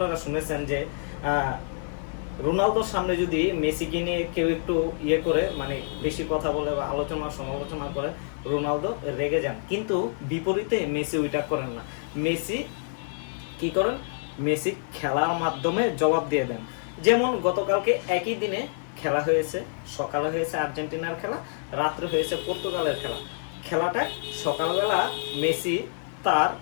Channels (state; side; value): silent; right; 60 dB below the other